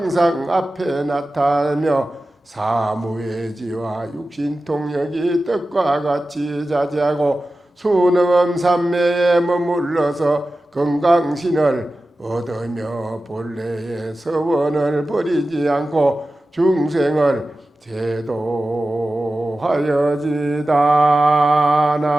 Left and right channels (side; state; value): both; normal; correlation 0.94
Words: 앞에 나타나며 사무예지와 육신통력이 뜻과 같이 자제하고 수능음 삼매에 머물러서 건강신을 얻으며 본래의 서원을 버리지 않고 중생을 제도하여지다.